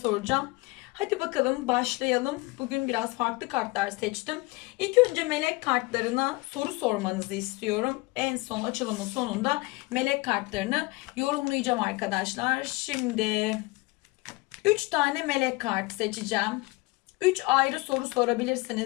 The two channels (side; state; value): right; quieter; 24.2 dB